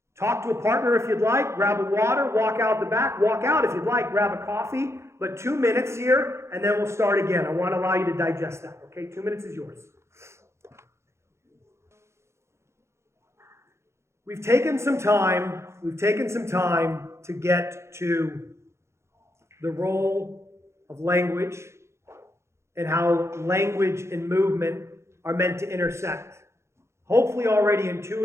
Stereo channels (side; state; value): left; late; 0.13 ms